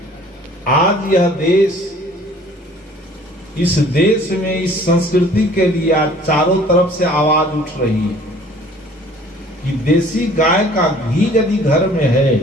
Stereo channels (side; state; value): both; normal; correlation 0.52